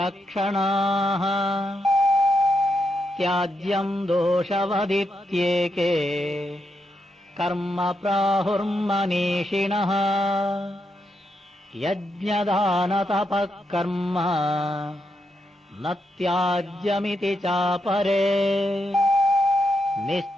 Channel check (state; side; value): normal; both; correlation 0.82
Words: त्याज्यं दोषवदित्येके कर्म प्राहुर्मनीषिणः। यज्ञदानतपः कर्म न त्याज्यमिति चापरे।